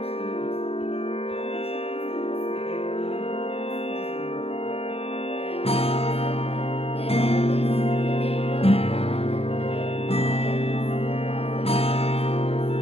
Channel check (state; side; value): late; right; 0.29 ms